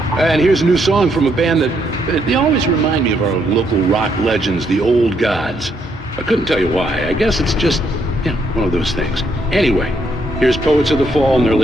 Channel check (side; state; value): both; normal; correlation 0.74